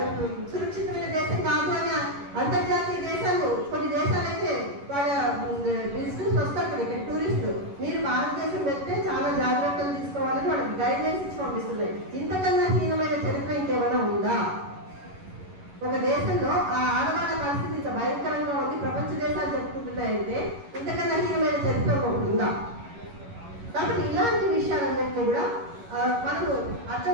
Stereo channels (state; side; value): late; left; 11 ms